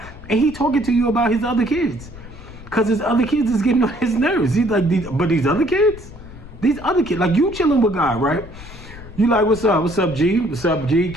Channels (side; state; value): left; noise; rumble, 16 dB below the sound